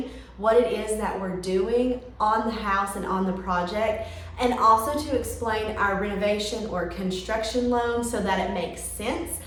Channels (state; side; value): identical; both; correlation 1.00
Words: what it is that we're doing on the house and on the project, and also to explain our renovation or construction loan so that it makes sense.